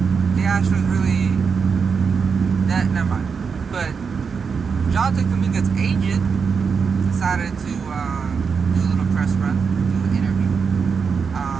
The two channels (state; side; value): quieter; left; 5.8 dB